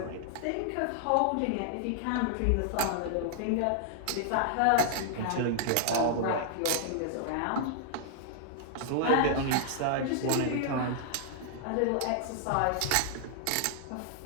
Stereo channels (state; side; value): different; both; correlation -0.01